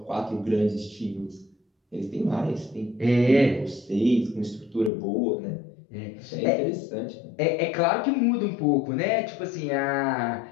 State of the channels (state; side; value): drops out; right; at 4.9 s